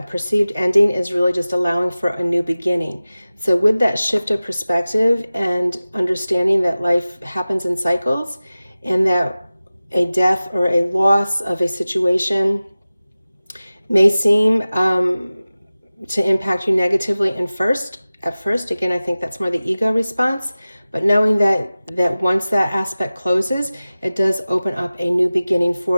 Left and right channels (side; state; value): both; inverted; correlation -0.97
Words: perceived ending is really just allowing for a new beginning. So with that shift of perspective and understanding that life happens in cycles, and that a death or a loss of a situation may seem to impact you negatively at first, again, I think that's more the ego response, but knowing that once that aspect closes, it does open up a new beginning